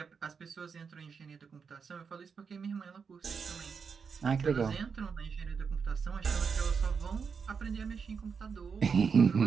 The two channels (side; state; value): left; quieter; 5.9 dB